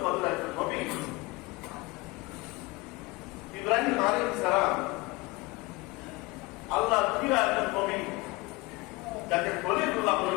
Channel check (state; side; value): quieter; right; 23.2 dB